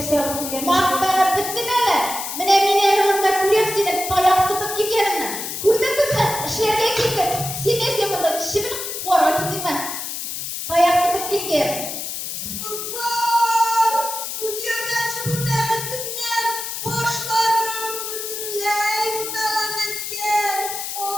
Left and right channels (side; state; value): left; noise; hiss, 5 dB below the sound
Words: yapıp gelmiş? Mahtanı bittin hele. Mine mineriminde kuryem seni tayak tutup giderim. Kurdun mu sen? Şehirde gittin. Sines yapında şimdi para gittim ben. Tayak tutup giderim. Kızlar, bu göğeci bu mehetinden başlarım bütünley mutalak etken.